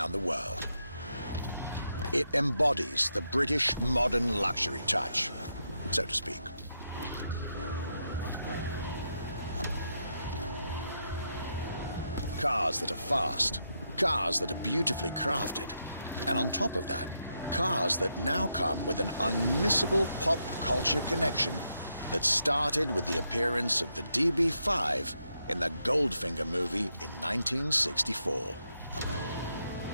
the world. It embodies the British modern luxury touch, so to speak. Cars that are fast, cars that are beautifully crafted, and on top of that, cars that now come with an unmissable pop culture connection that started with the appearance of the DB5 in the Goldfinger movie in 1964.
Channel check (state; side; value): inverted; both; correlation -0.82